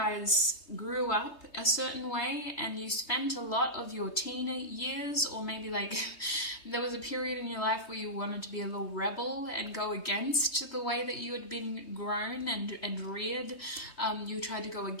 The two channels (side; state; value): right; late; 3.2 ms